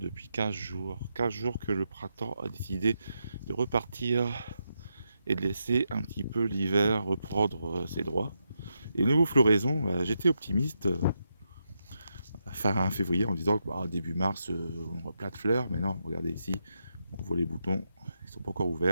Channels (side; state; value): both; inverted; correlation -0.84